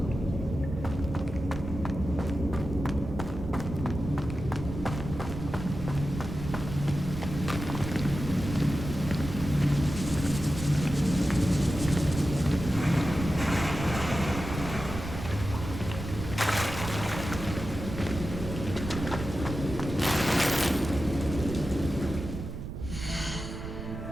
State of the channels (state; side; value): noise; right; rumble, 7 dB below the sound